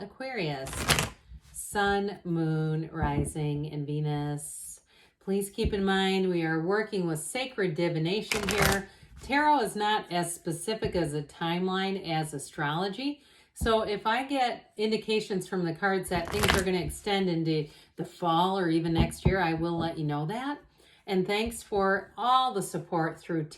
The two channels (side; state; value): both; identical; correlation 1.00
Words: Aquarius, Sun, Moon, Rising, and Venus. Please keep in mind we are working with sacred divination here. Tarot is not as specific as a timeline as astrology. So if I get indications from the cards that things are going to extend into the fall or even next year, I will let you know that. And thanks for all the support through